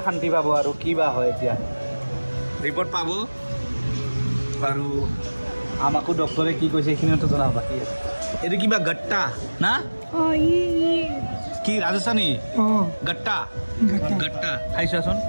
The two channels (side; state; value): both; inverted; correlation -1.00